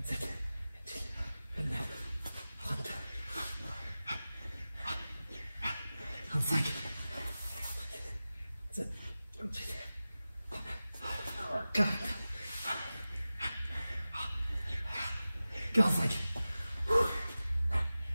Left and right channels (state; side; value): inverted; both; correlation -0.96